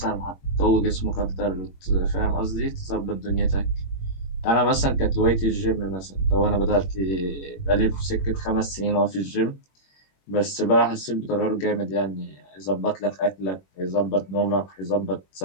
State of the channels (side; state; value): right; late; 21 ms